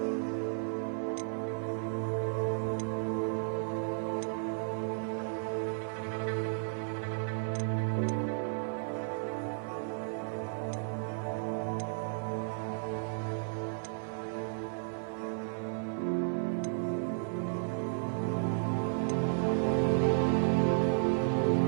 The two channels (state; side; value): silent; left; digital silence